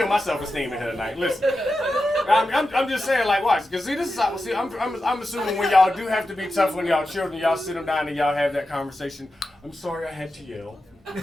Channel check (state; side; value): normal; both; correlation 0.91